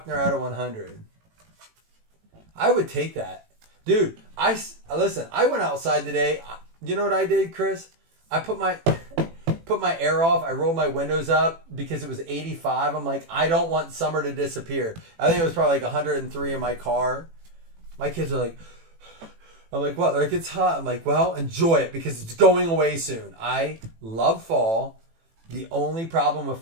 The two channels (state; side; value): late; left; 18 ms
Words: out of 100. I would take that. Dude, listen, I went outside today. You know what I did, Chris? I put my air off. I rolled my windows up because it was 85. I'm like, I don't want summer to disappear. I think it was probably like 103 in my car. My kids are like, I'm like, what? They're like, it's hot. I'm like, well, enjoy it because it's going away soon. I love fall. The only problem with